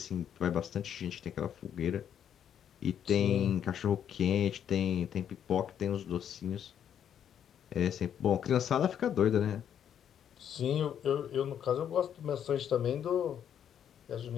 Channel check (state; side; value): quieter; right; 9.2 dB